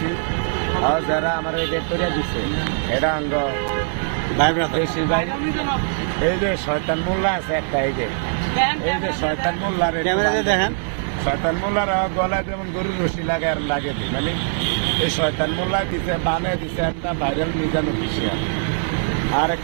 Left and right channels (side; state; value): left; silent; digital silence